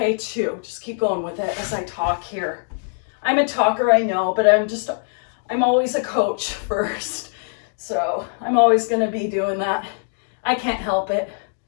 too. Just keep going with it as I talk here. I'm a talker, I know, but I'm always a coach first. So I'm always gonna be doing that. I can't help it.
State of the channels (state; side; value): silent; right; digital silence